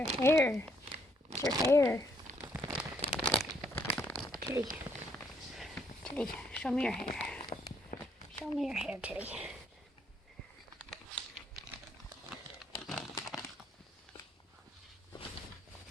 hair. It's your hair. Tilley. Tilley, show me your hair. Show me your hair, Tilley.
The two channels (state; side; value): normal; both; correlation 0.70